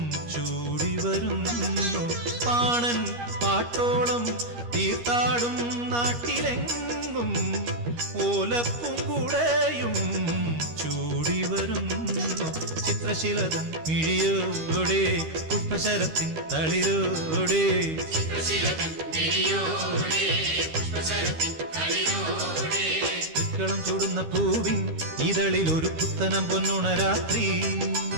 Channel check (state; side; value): late; left; 13 ms